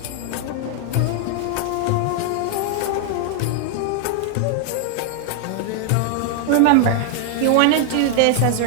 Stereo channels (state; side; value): different; both; correlation 0.00